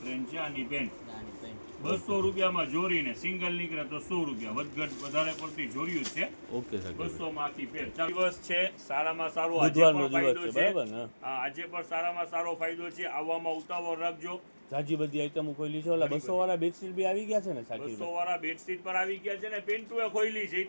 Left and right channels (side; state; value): both; inverted; correlation -1.00